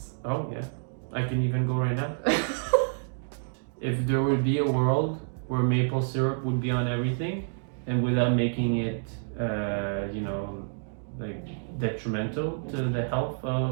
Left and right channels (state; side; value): silent; left; digital silence